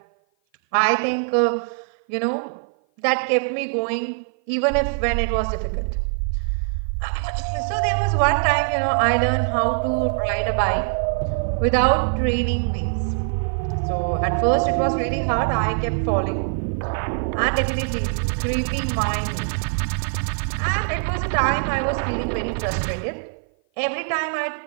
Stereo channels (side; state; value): left; silent; 55 dB below the other